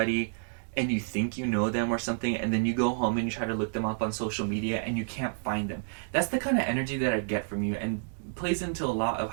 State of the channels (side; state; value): left; silent; digital silence